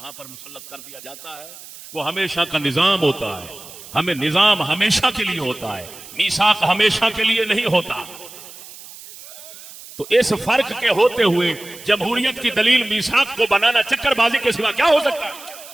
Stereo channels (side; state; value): right; noise; hiss, 17 dB below the sound